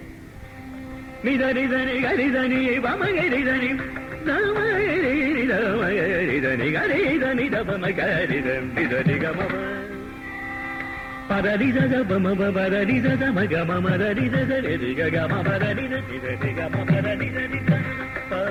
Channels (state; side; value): identical; both; correlation 1.00